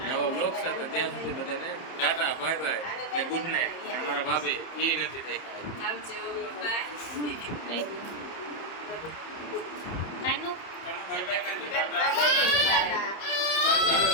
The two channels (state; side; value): late; right; 30 ms